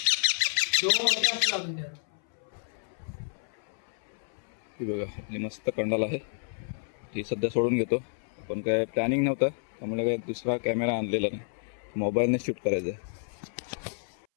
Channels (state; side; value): silent; right; 58 dB below the other